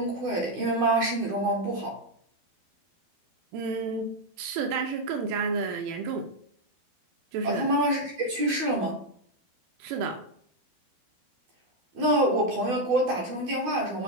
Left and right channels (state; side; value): late; left; 12 ms